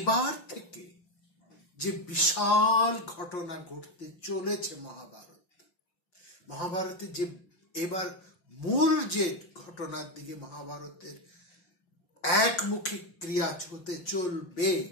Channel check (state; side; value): late; right; 5.6 ms